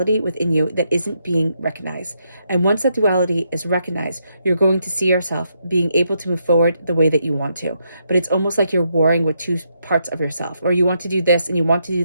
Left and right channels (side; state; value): both; inverted; correlation -0.79